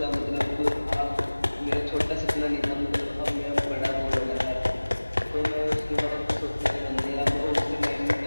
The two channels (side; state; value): both; inverted; correlation -1.00